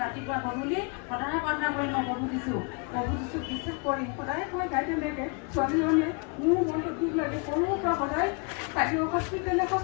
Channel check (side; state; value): right; quieter; 34.9 dB